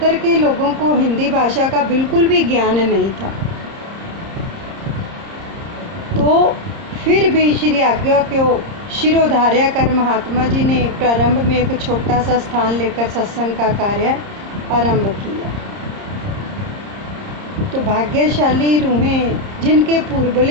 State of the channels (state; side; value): late; left; 30 ms